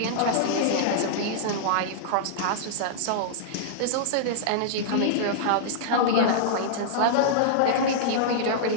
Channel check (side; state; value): both; different; correlation -0.02